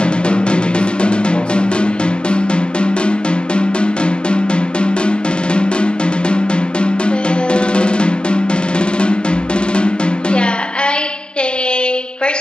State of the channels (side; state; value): right; late; 0.051 ms